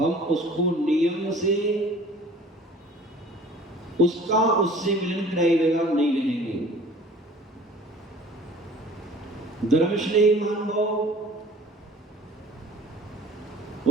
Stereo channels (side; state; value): both; normal; correlation 0.48